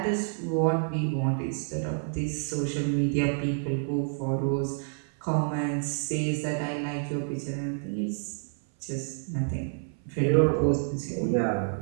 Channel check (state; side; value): silent; left; 56 dB below the other